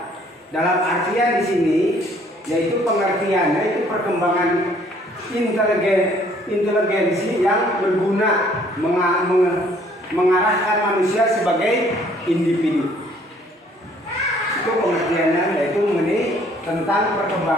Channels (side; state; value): both; normal; correlation 0.61